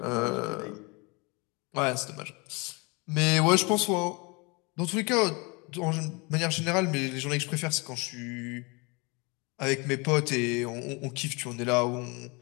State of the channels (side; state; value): right; quieter; 28.6 dB